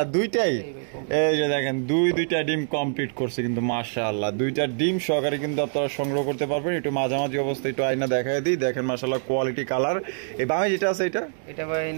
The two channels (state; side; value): silent; left; digital silence